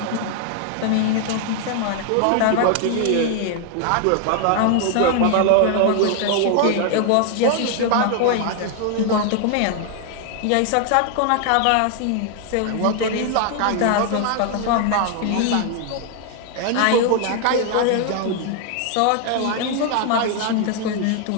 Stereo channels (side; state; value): both; different; correlation 0.00